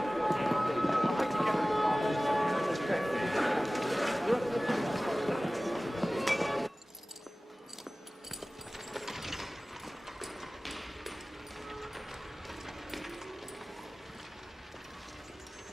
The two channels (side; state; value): both; normal; correlation 0.98